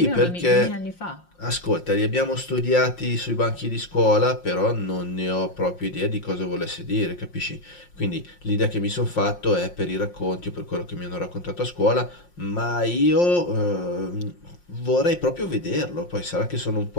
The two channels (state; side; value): late; right; 5.7 ms